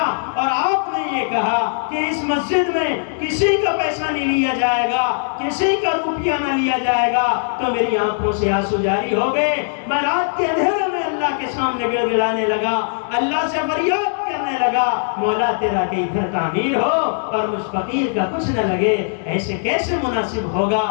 اور آپ نے یہ کہا کہ اس مسجد میں کسی کا پیسہ نہیں لیا جائے گا، کسی کا روپیہ نہ لیا جائے گا، تو میری آنکھوں سے آنسو جاری ہو گئے۔ میں رات کے اندھیرے میں اللہ کے سامنے گڑ گڑانے لگا، اللہ سے فریاد کرنے لگا مولا تیرا کہ ادھر تعمیر ہو اور مجھ فقیر کا کچھ نہ لگے، ایسے کیسے مناسب ہوگا؟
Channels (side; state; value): right; silent; digital silence